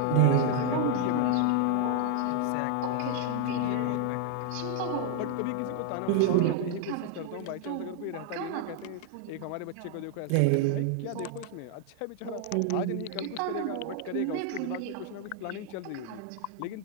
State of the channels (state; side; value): different; both; correlation 0.00